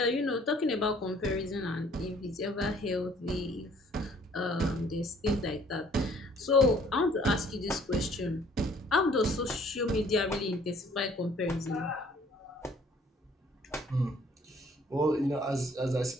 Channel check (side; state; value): both; normal; correlation 0.58